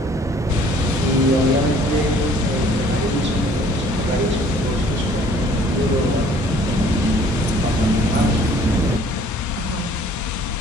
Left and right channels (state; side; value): normal; both; correlation 0.56